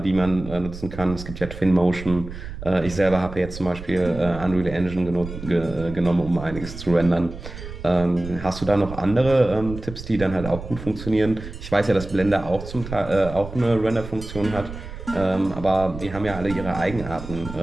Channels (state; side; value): noise; right; rumble, 11 dB below the sound